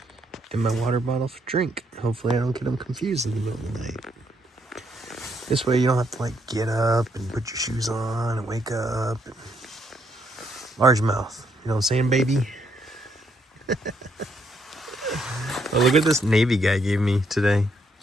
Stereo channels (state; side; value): normal; both; correlation 0.73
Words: and my water bottle for drink. Hopefully I don't get them confused in the middle of the night. This way you don't have to like get up and put your shoes on and wake up. And largemouth, you know what I'm saying, baby? Oh, look what this Navy guy gave me today.